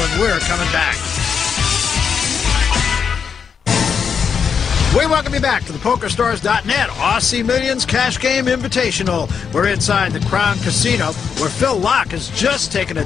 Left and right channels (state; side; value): quieter; right; 6.7 dB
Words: we're coming back. We welcome you back to the PokerStars.net Aussie Millions Cash Game Invitational. We're inside the Crown Casino, where Phil Locke has just taken a